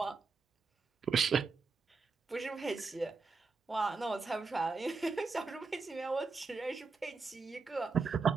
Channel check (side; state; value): left; quieter; 4.4 dB